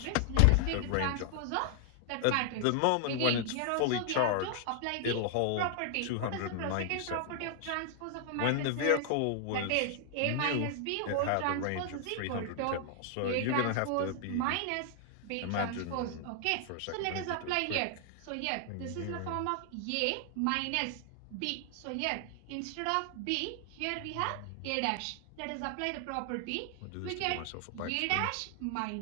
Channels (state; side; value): different; both; correlation 0.00